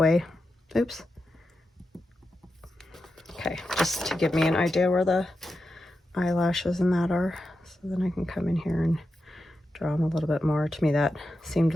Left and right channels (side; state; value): both; normal; correlation 0.89